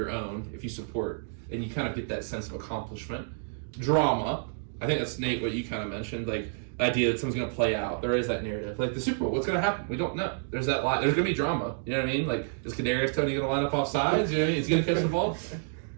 own if you support, and you kind of get that sense of accomplishment. Drama. I think that's Nate, what you kind of mentioned, like the idea that something's going to play out. There is that narrative. Like the Super Bowl, what's going to happen? We don't know. There's that line. There's going to be drama. You know what I mean? Like, is Kadarius Toney going to line up off sides? You know what I mean? He's going to catch the ball.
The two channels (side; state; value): left; silent; digital silence